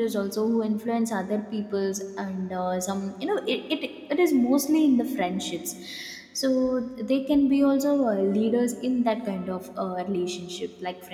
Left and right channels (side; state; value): both; identical; correlation 1.00